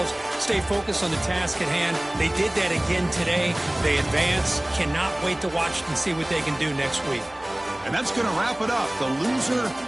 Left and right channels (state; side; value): noise; right; hum, 28 dB below the sound